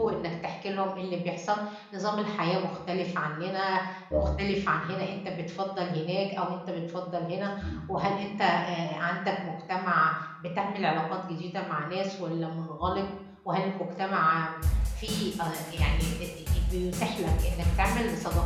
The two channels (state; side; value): identical; both; correlation 1.00